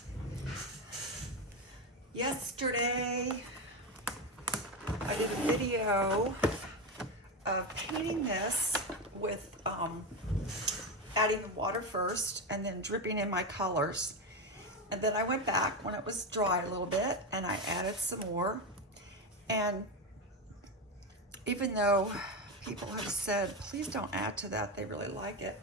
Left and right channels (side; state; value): both; normal; correlation 0.15